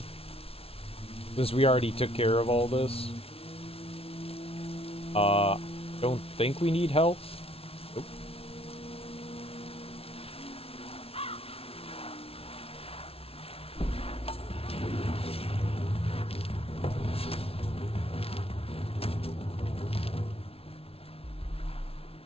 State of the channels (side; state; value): right; late; 0.28 ms